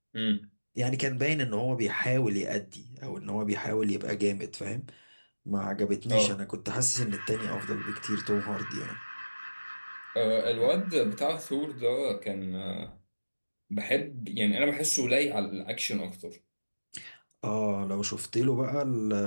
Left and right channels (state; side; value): inverted; both; correlation -1.00